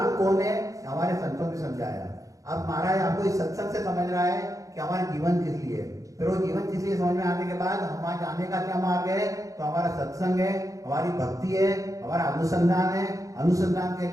कौन है हमारे संतों ने समझाया। अब महाराज आपको इस सत्संग से समझ रहा है कि हमारा जीवन किस लिए है। फिर वो जीवन किस लिए समझ में आने के बाद हमारे जाने का क्या मार्ग है, तो हमारा सत्संग है, हमारी भक्ति है, हमारा अनुसंधान है। अनुसंधान के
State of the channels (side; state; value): left; late; 0.16 ms